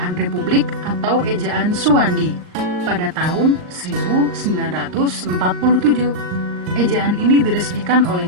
Republik atau ejaan Suwandi pada tahun 1947. Ejaan ini diresmikan oleh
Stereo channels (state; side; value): late; left; 39 ms